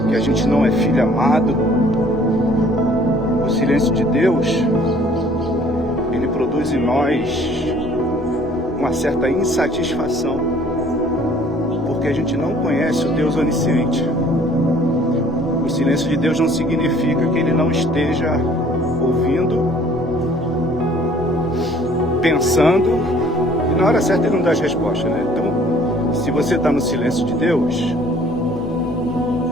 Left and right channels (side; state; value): both; normal; correlation 0.55